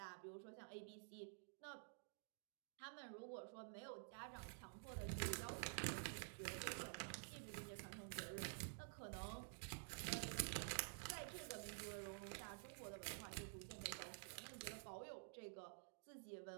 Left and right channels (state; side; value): silent; left; digital silence